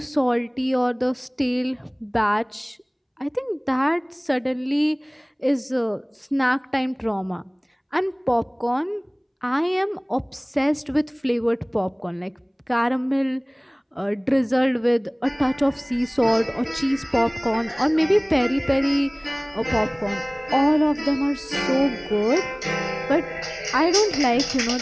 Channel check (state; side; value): identical; both; correlation 1.00